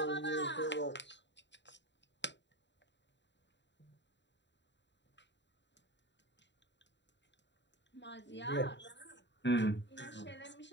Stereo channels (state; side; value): late; right; 0.52 ms